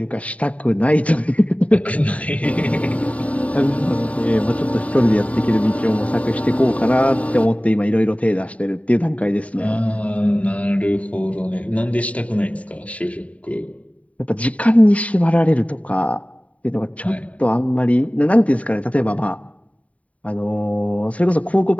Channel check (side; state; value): right; late; 0.067 ms